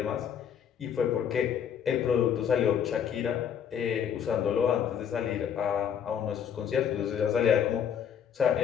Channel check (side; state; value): right; quieter; 8.3 dB